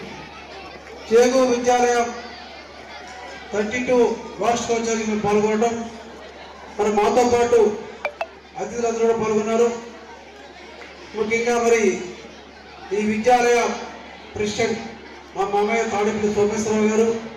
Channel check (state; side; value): identical; both; correlation 1.00